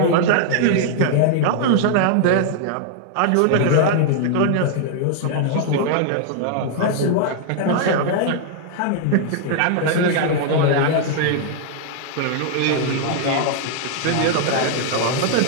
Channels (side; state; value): both; different; correlation 0.00